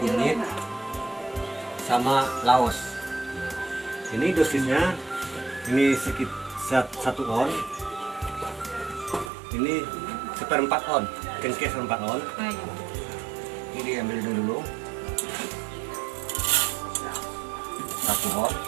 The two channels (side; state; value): left; drops out; at 9.3 s